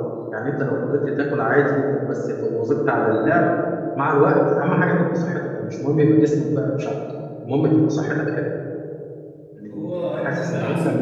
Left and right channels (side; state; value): both; identical; correlation 1.00